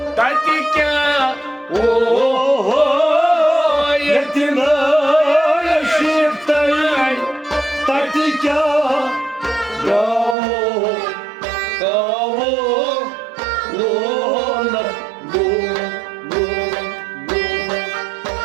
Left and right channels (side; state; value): left; drops out; at 10.4 s